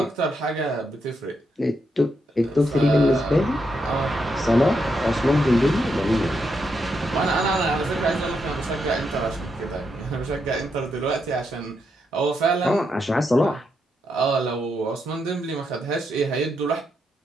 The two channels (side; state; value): both; normal; correlation 0.81